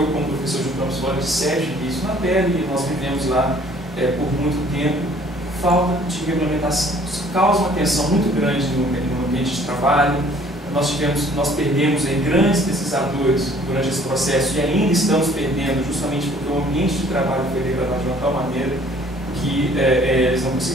como professor de Campos Flores, tive isso na pele, e nós vivemos lá por muito tempo, falta de regulamentação. Isso causa uma tensão muito grande no ambiente de trabalho. Nós perdemos aí grandes pesquisadores durante esse processo e ainda estamos perdendo justamente porque o ambiente de trabalho foi degradado de uma tal maneira que eles não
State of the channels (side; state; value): both; normal; correlation 0.56